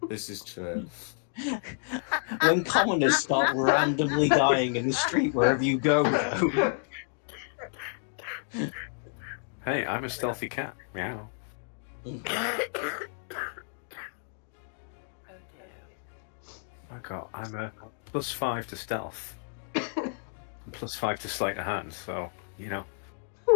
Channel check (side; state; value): right; silent; digital silence